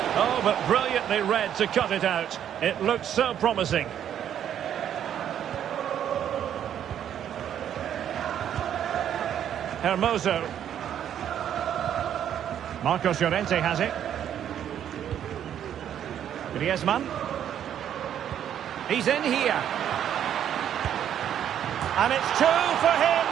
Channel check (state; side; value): quieter; left; 9.9 dB